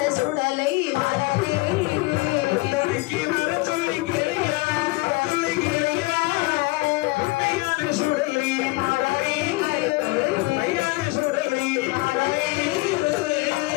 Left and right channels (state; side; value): quieter; right; 23.7 dB